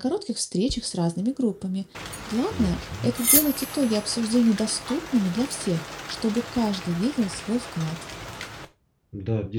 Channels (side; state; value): both; identical; correlation 1.00